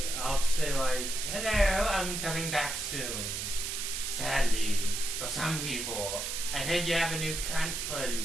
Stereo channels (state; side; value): noise; right; hiss, 3 dB below the sound